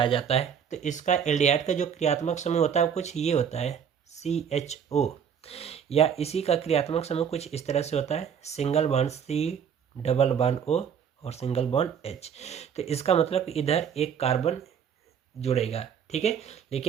जाता है। तो इसका एल्डिहाइड का जो क्रियात्मक समूह होता है वो कुछ ये होता है CHO, या इसी का क्रियात्मक समूह कुछ इस तरह से होता है, single bond C, double bond O और सिंगल बॉन्ड H। तो इसका मतलब इधर एक कार्बन जुड़ेगा। ठीक है,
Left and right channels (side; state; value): left; quieter; 7.8 dB